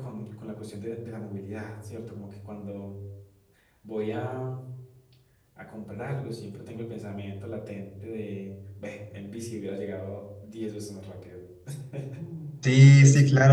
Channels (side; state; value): both; identical; correlation 1.00